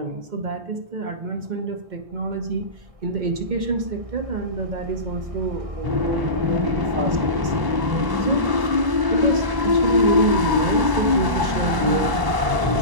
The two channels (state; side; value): late; left; 1.0 ms